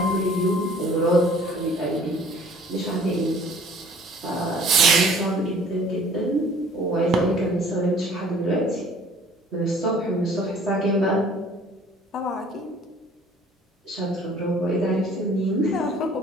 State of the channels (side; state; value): both; normal; correlation 0.53